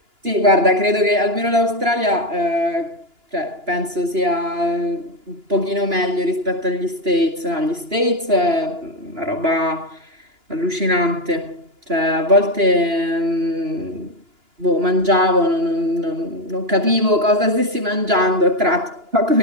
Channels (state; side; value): late; left; 2.9 ms